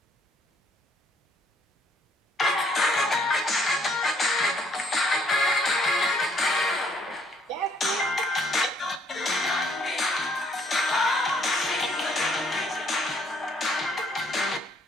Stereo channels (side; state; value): both; normal; correlation 0.66